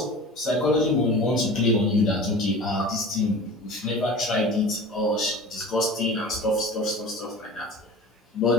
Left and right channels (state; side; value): normal; both; correlation 0.37